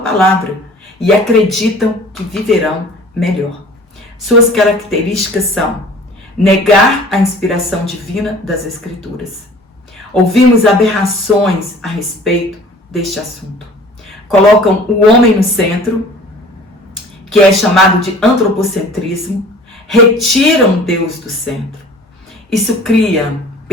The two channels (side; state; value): both; normal; correlation 0.47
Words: e acreditam que viverão melhor. Suas características são negar a inspiração divina das Escrituras. Ouvimos aberrações a respeito deste assunto. Colocam o homem no centro, que é chamado de antropocentrismo, retiram Deus do centro. Isso cria